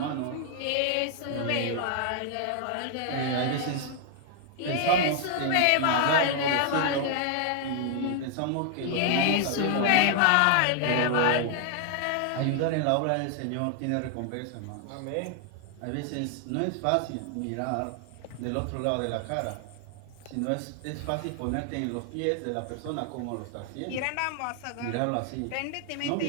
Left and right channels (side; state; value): both; different; correlation 0.00